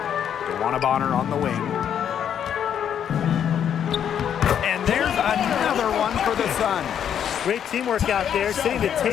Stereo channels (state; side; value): quieter; right; 9.0 dB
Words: DeWanna Bonner on the wing. And there's another one for the Sun. Great teamwork out there, setting the